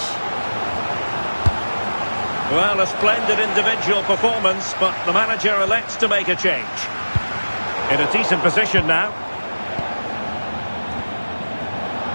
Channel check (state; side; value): inverted; both; correlation -1.00